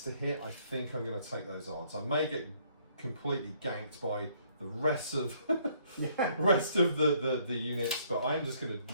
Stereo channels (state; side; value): inverted; both; correlation -0.65